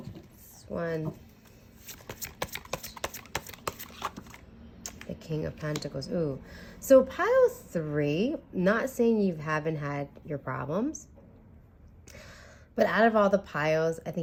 one. The King of Pentacles. Ooh. So pile 3, not saying you haven't had your problems. But out of all the piles, I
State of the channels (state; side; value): identical; both; correlation 1.00